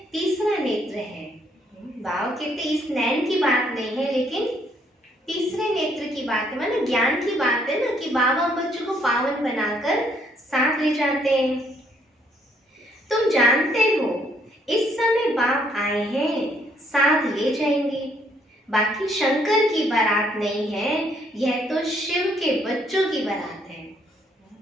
तीसरा नेत्र है। बाबा कहते इस नैन की बात नहीं है, लेकिन तीसरे नेत्र की बात है, माने ज्ञान की बात है ना, कि बाबा बच्चों को पावन बनाकर साथ ले जाते हैं। तुम जानते हो इस समय बाप आए हैं, साथ ले जाएंगे। बाकी शंकर की बारात नहीं है, यह तो शिव के बच्चों की बारात है।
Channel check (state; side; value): normal; both; correlation 0.68